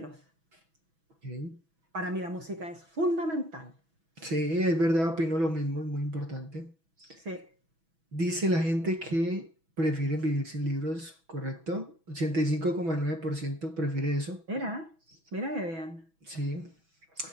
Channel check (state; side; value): late; left; 6.1 ms